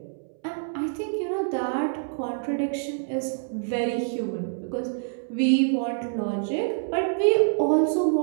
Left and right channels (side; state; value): left; silent; 61 dB below the other